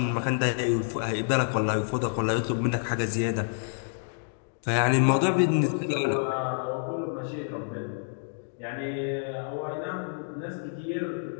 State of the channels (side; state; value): right; silent; digital silence